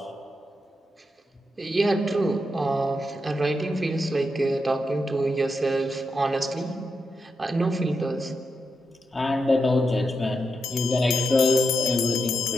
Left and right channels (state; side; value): normal; both; correlation 0.85